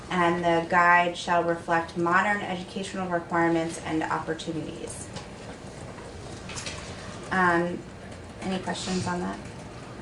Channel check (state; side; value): identical; both; correlation 1.00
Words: And the guide shall reflect modern educational requirements and opportunities. Any questions on that?